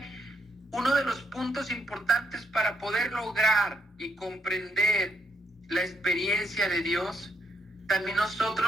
uno de los puntos importantes para poder lograr y comprender la experiencia de Dios, también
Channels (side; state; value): both; normal; correlation 0.74